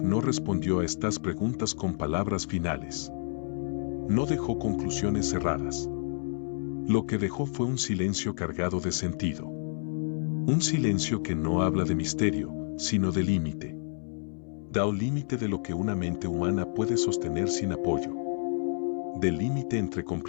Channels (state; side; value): silent; right; 58 dB below the other